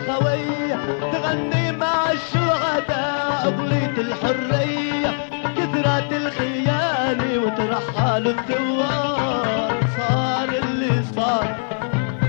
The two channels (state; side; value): silent; right; digital silence